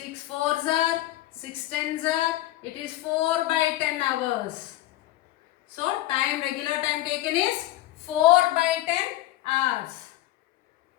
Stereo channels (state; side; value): quieter; right; 15.4 dB